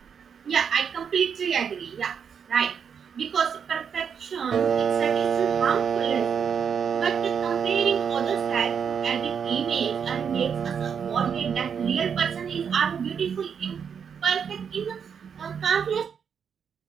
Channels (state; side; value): quieter; left; 7.1 dB